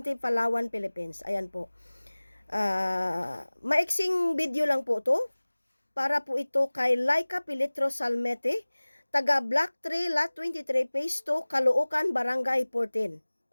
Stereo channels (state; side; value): inverted; both; correlation -1.00